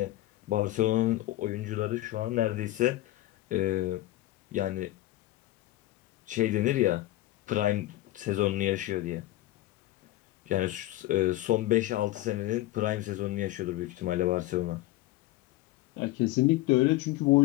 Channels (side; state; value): right; quieter; 16.4 dB